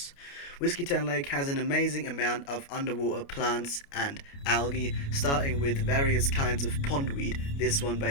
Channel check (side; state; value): right; late; 29 ms